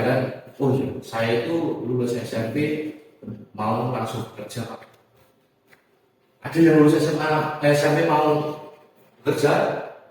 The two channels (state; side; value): identical; both; correlation 1.00